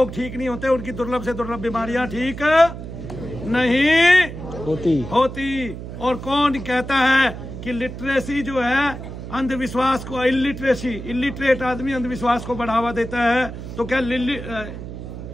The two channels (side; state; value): right; noise; hum, 10 dB below the sound